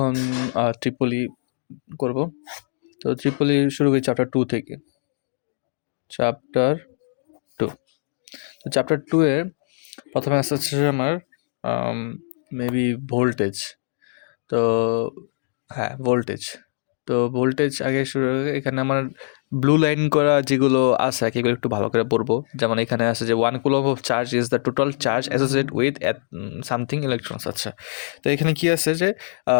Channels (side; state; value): right; silent; 63 dB below the other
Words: ট্রিপলি করব। তো ট্রিপলি শুরু করি চ্যাপ্টার 2 থেকে। চ্যাপ্টার 2, তো চ্যাপ্টার 2 এ প্রথমে আসছে আমার মেবি ভোল্টেজ। তো হ্যাঁ, ভোল্টেজ। তো ভোল্টেজ আগে শুরু হবে। এখানে আমার ব্লু লাইন করা যেগুলো আছে এগুলো একটু ভালো করে পড়বো। যেমন এখানে আছে যে 1 coulomb of charge is the total charge associate with something electrons. আচ্ছা, তো এখানে কি আছে যে